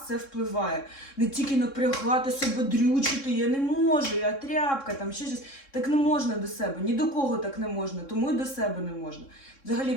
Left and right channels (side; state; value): right; late; 3.7 ms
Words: це впливає. Не тільки напрягати себе, дрючити, я не можу, я тряпка, там ще щось. Так не можна до себе, ні до кого так не можна, тому і до себе не можна. Взагалі